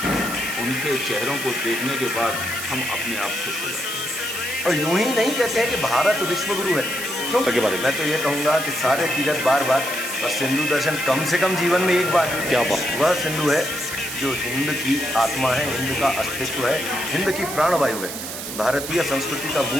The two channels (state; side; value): noise; right; hiss, 7 dB below the sound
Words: है, उनके चेहरों को देखने के बाद हम अपने आप खुश हो जाते हैं। और यूं ही नहीं कहते हैं कि भारत विश्व गुरु है, क्यों के बारे में मैं तो ये कहूँगा कि सारे तीर्थ बार बार और सिंधु दर्शन कम से कम जीवन में एक बार। क्या बात। वह सिंधु है जो हिंद की आत्मा है, हिंद का अस्तित्व है, हिंद की प्राणवायु है। भारतीय संस्कृति का